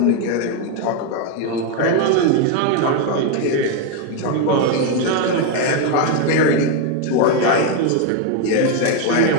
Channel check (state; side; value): different; both; correlation 0.01